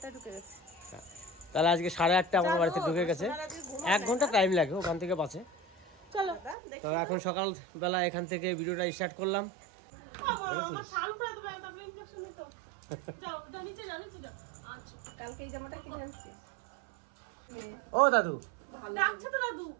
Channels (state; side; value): drops out; left; at 6.6 s